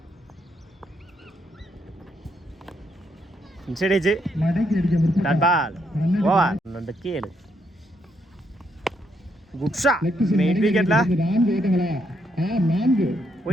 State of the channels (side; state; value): both; normal; correlation 0.76